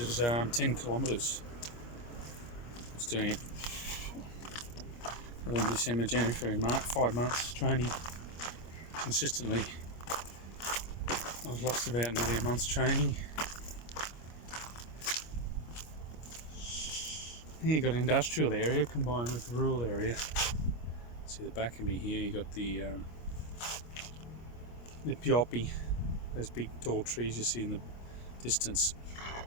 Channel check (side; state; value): right; late; 25 ms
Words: 10 kilometres. I was doing it November, December, January, February, March, 5 months training consistently. I was lost about nearly a month's training. Here you got an industrial area combined with rural area. See the back of me here, you got the pioppi, those big tall trees you see in the distance.